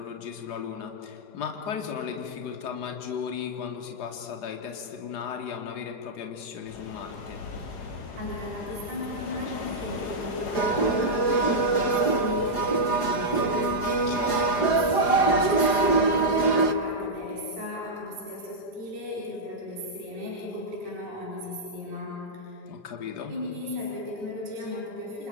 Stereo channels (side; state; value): right; late; 4.9 ms